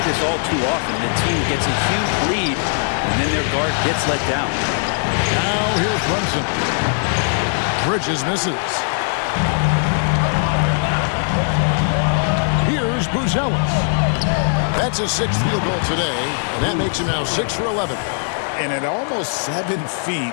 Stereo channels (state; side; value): silent; right; digital silence